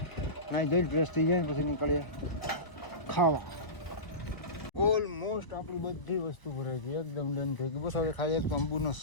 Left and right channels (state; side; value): late; right; 1.0 ms